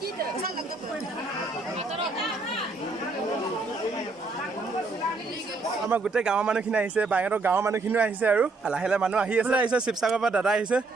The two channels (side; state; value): left; quieter; 3.6 dB